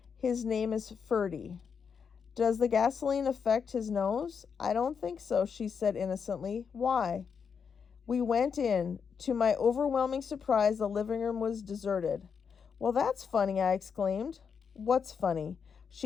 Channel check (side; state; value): right; quieter; 6.4 dB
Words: "His name is Ferdy. Does the gasoline affect his nose?" "I don't think so," she said innocently. "Why?" We went in. To my overwhelming surprise, the living room was deserted. "Well, that's funny," I exclaimed. "What's funny?"